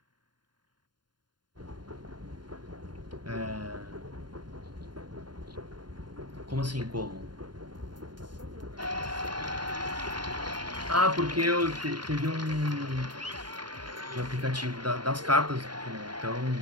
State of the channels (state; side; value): late; left; 0.71 ms